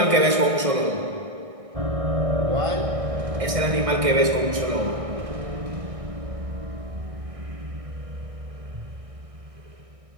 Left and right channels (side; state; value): left; late; 1.6 ms